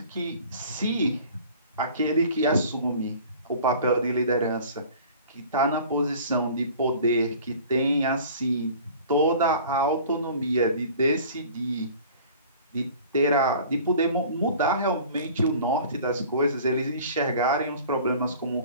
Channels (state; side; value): inverted; both; correlation -0.46